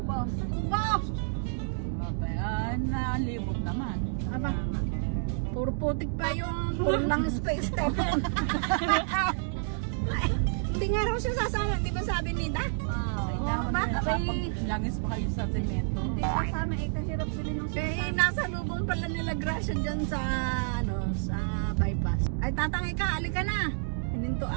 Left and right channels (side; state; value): left; silent; digital silence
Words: Ubos. Nalibot naman. Aba, puro putik pa yung puro lang space tayo. Hindi nga raw siya sasama, hindi ba sabi nila? Langis pa kayo sa semento. Kasama eh, kahirap bilhin ng nasa lubong pala nila Gracia dyan sa, sa bypass. Ay, tatang ika, alika na.